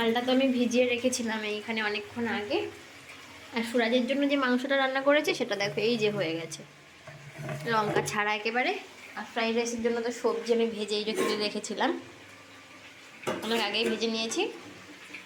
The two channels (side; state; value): both; identical; correlation 1.00